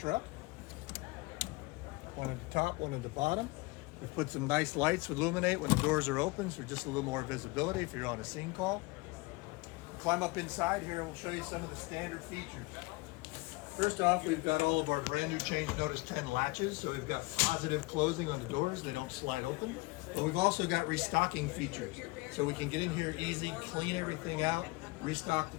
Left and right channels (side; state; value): right; quieter; 23.9 dB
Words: One at the top, one at the bottom. We've put some nice lights to illuminate when the doors are open, so just a little more visibility if you're on a scene call. Climb up inside here and we'll show you some of the standard features. First off, we've got all of our brand new Change Notice 10 latches, so we've got positive closing on the doors, they don't slide open. But we've also got restocking features, so we can get in here easy, clean everything out, restock the